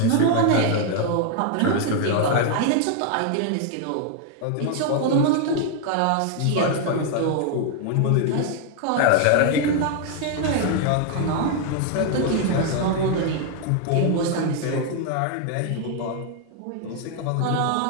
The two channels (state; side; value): different; both; correlation 0.00